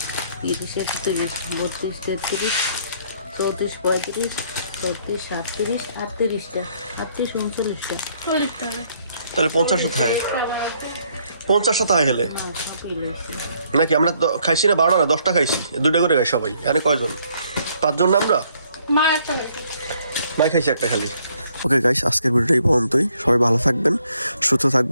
30, 31, 32, 33, 34, 35, 36, 37, 38টা, 38, 39টা। 40টা। তাহলে 50টা থাকে। 50টা থাকে হেলে না সবই লইছি। নাকি? আমরা খাইছি না 12টা না 10টা খাইছি, 2টা করে খাই সবাই। এখানে কয়জন? 5 জন না আমরা? মা একটা খাইছে। মাই খাইছি একটা খালি। ওকে গাইস, আজকের ভিডিওটা এই পর্যন্তই। সবাই ভালো থাকবেন, সুস্থ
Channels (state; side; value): inverted; both; correlation -0.67